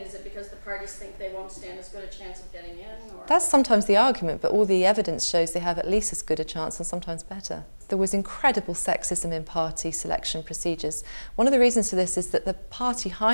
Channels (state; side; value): inverted; both; correlation -1.00